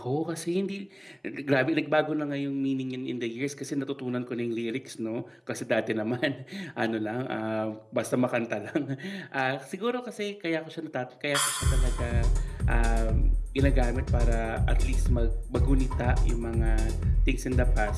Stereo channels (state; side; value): identical; both; correlation 1.00